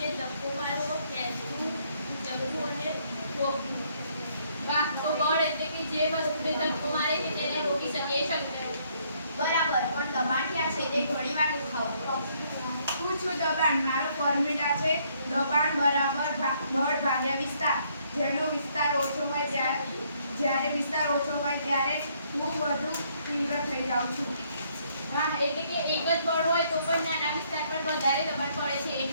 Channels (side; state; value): both; inverted; correlation -0.68